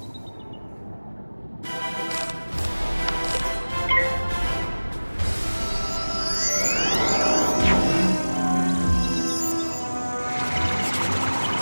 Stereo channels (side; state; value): both; inverted; correlation -1.00